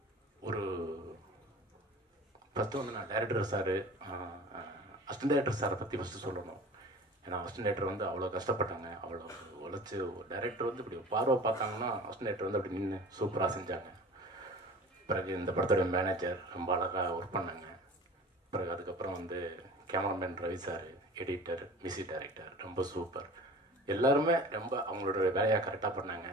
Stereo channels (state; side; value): normal; both; correlation 0.41